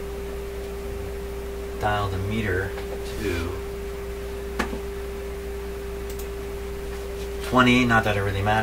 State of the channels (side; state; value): both; identical; correlation 1.00